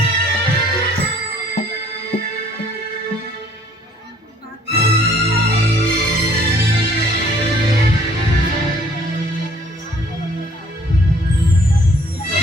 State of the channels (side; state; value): both; normal; correlation 0.59